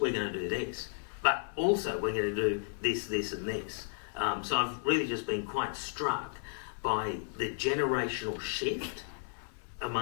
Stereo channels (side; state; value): right; silent; digital silence